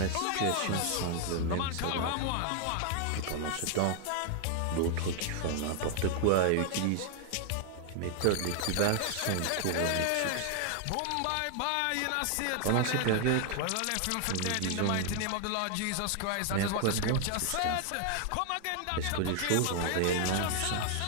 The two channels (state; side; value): different; both; correlation 0.00